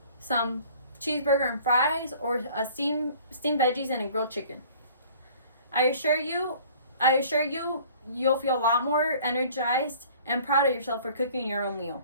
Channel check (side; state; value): both; inverted; correlation -0.51